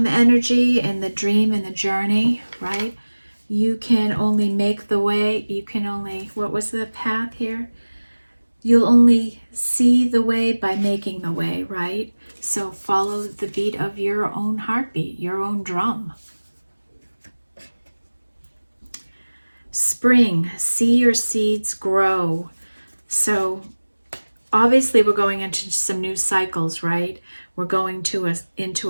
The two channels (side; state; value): both; inverted; correlation -1.00